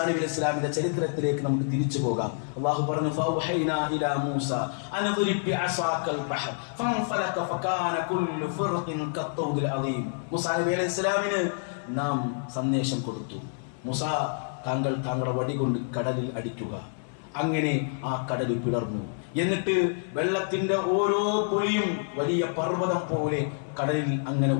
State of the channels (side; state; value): right; silent; 60 dB below the other